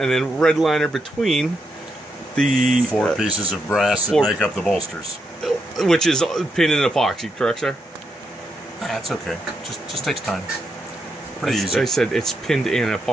then red liner between the 4 pieces of brass that make up the bolsters. Which is pinned in epoxy, correct, sir? That's okay. Just takes time. Pretty easy. I said it's pinned in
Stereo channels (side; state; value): both; normal; correlation 0.82